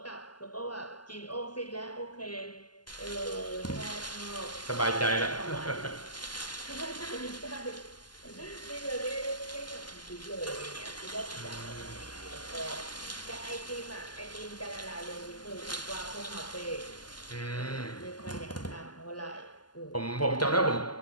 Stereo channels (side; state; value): right; late; 0.71 ms